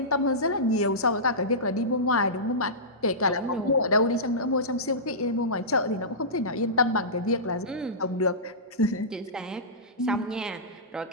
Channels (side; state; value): both; normal; correlation -0.18